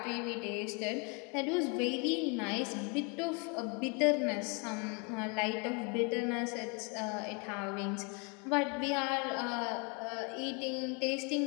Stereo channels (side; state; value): right; quieter; 33.3 dB